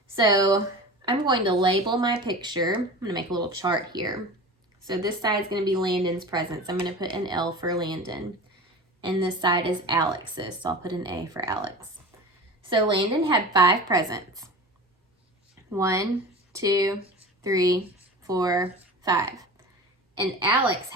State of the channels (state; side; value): normal; both; correlation 0.34